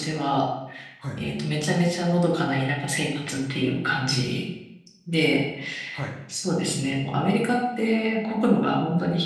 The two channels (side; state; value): both; identical; correlation 1.00